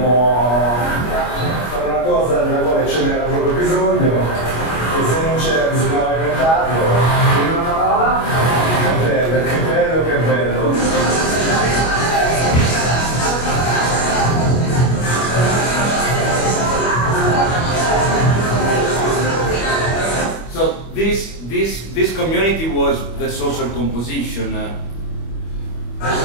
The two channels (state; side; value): late; right; 25 ms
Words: a fare una cosa della quale ce n'era proprio bisogno, e se non c'era bisognava inventarlo. Quindi una parola? Che bello, che bello, che bello. So this community was the social composition.